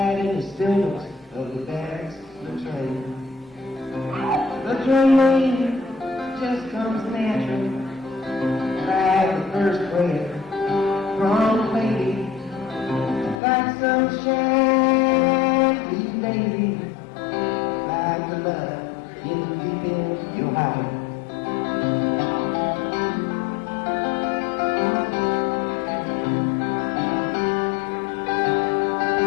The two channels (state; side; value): drops out; right; at 13.4 s